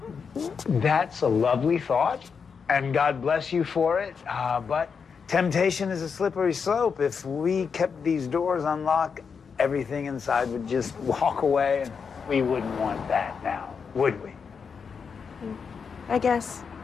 a lovely thought, and God bless you for it. But temptation is a slippery slope. If we kept these doors unlocked, everything inside would just walk away, and we wouldn't want that now, would we? I guess.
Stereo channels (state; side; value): quieter; right; 6.0 dB